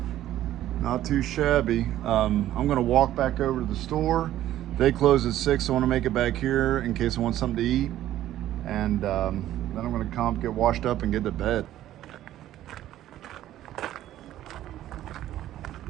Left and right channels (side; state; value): left; quieter; 13.1 dB